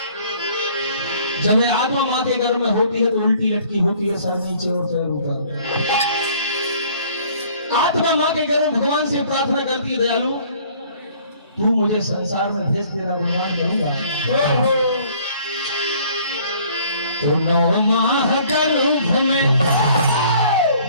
जब ये आत्मा माँ के गर्भ में होती है तो उल्टी लटकी होती है, सर नीचे और पैर ऊपर। आत्मा मां के गर्भ में भगवान से प्रार्थना करती है, दयालु तू मुझे संसार में भेज, तेरा गुणगान करूंगा। तो 9 माह गर्भ में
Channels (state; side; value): inverted; both; correlation -0.56